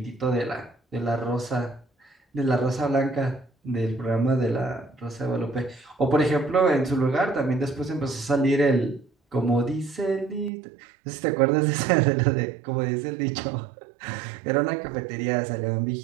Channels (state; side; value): drops out; left; at 10.5 s